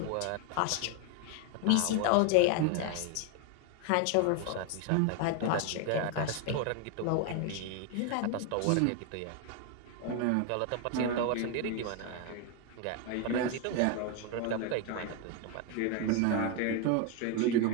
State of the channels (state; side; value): different; both; correlation 0.01